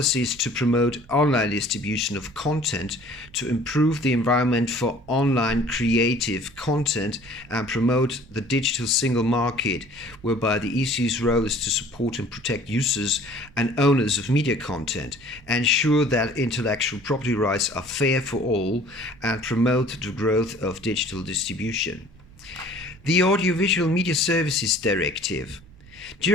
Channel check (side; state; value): right; noise; rumble, 24 dB below the sound